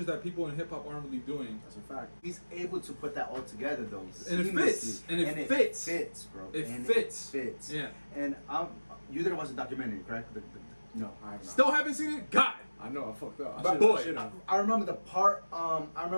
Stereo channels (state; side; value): inverted; both; correlation -1.00